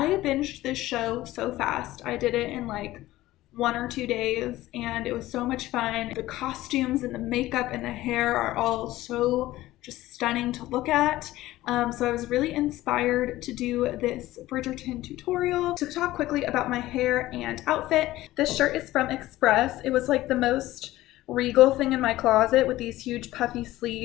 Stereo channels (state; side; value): quieter; right; 16.4 dB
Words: binged this show so fast. I did it in like 1 or 2 days, and it was so much fun. The costumes and the makeup and the hair are all so just stunning to look at. So I was really inspired to do this Bridgerton tutorial. To talk quickly about my hair and outfit, this shirt is from Express. It was like the most regal thing in my closet with these huge puffy